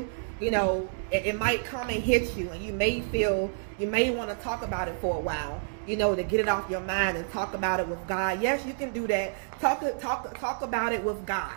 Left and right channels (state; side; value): silent; left; digital silence